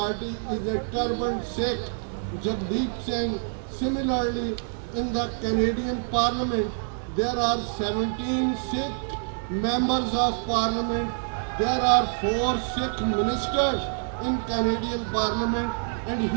is a turbaned Sikh, Jagdeep Singh. Similarly, in the Canadian Parliament, there are 17 Sikh members of Parliament. There are 4 Sikh ministers in Canadian Parliament. And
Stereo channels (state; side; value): silent; left; digital silence